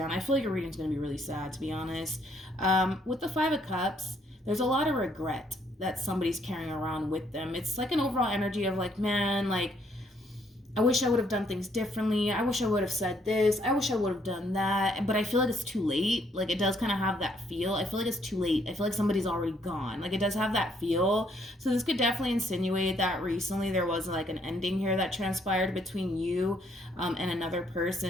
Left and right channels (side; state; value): both; normal; correlation 0.69